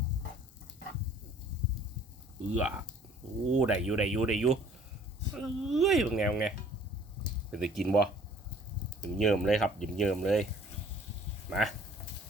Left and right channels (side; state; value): both; normal; correlation 0.54